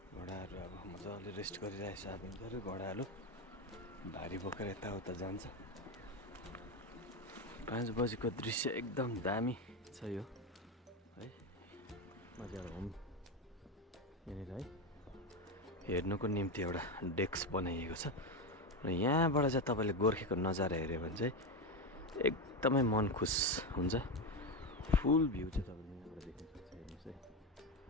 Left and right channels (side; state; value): both; normal; correlation 0.13